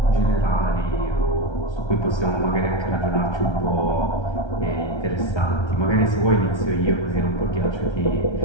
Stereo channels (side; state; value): right; late; 1.3 ms